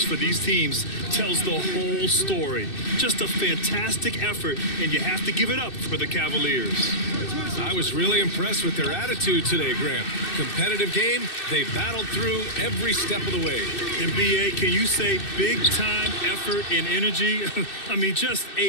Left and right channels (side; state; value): right; late; 2.6 ms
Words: for these teams tells the whole story. Just a fantastic effort, and you have to give it up for the Cavaliers. I was really impressed with their attitude today, Grant. Competitive game, they battled through every step of the way. And BA, can you say big time effort and energy? I mean, just